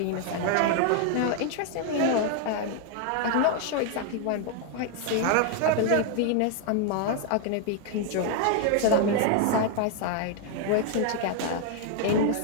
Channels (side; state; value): both; different; correlation 0.00